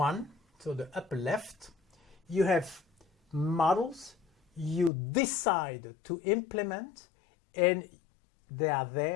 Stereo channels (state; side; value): drops out; right; at 4.9 s